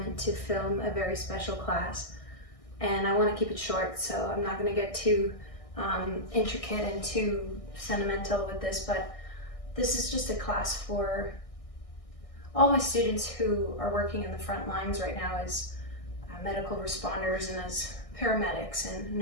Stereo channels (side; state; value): right; late; 1.6 ms